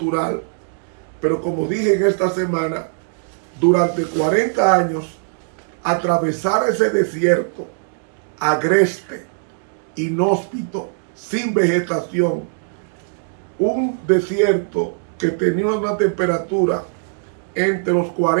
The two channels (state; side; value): silent; left; digital silence